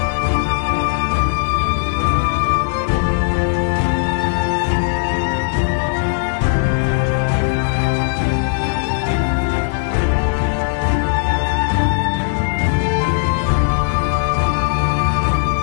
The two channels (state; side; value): silent; right; digital silence